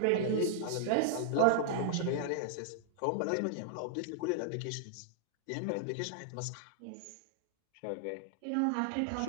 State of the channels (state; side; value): different; both; correlation 0.00